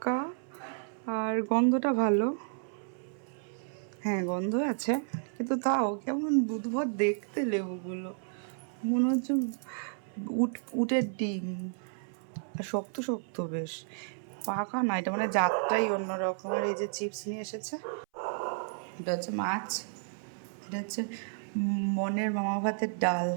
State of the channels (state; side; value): silent; left; 56 dB below the other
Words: আর গন্ধটা ভালো, হ্যাঁ গন্ধ আছে, কিন্তু তাও কেমন বুধবার দেখতে লেবুগুলো, মনে হচ্ছে উটের ডিম, আর শক্ত শক্ত বেশ, পাকা না, এটা মানে জাতটাই অন্যরকম। আর এই যে চিপস নিয়ে এসেছে, এটা হচ্ছে মাছ, এটা হচ্ছে মনের মামা ভাতের ডাল,